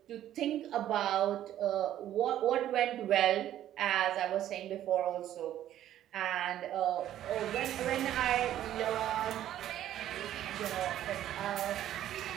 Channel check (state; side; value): quieter; left; 12.1 dB